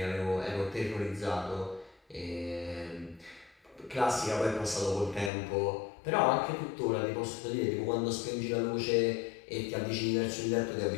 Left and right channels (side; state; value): right; drops out; at 5.3 s